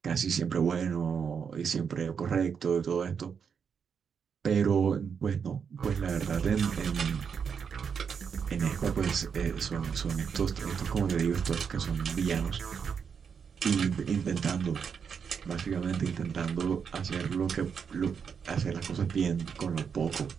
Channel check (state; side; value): quieter; left; 6.7 dB